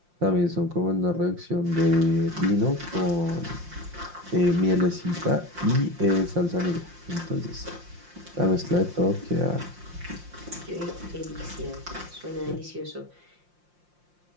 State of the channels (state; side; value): late; left; 5.7 ms